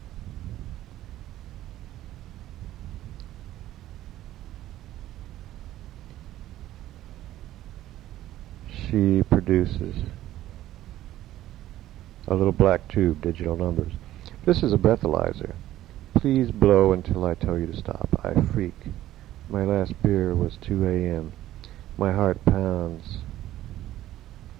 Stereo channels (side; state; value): left; quieter; 13.9 dB